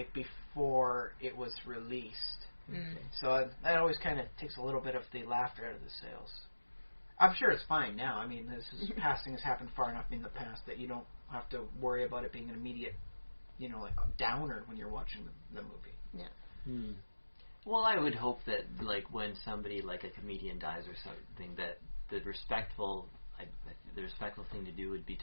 before it was released. Mm. So that always kind of takes a little bit of the laughter out of the sales. I'm sure it's fine now. I mean, passing has happened far enough in the past that you don't have to worry about it being an immediate, like a downer when you're watching the movie. Yeah. Hmm. Well, I would hope that, like, when somebody, like a comedian dies or something, that the respectful thing to do would be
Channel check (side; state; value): both; inverted; correlation -1.00